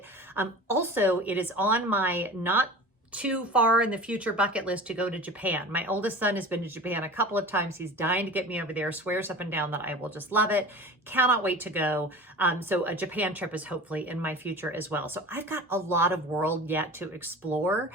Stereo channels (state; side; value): normal; both; correlation 0.36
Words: Also, it is on my not too far in the future bucket list to go to Japan. My oldest son has been to Japan a couple of times. He's dying to get me over there, swears up and down that I will just love it. Cannot wait to go. So a Japan trip is hopefully in my future as well. So I've got a lot of world yet to explore.